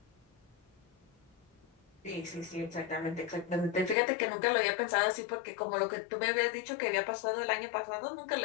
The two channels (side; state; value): right; drops out; at 4.0 s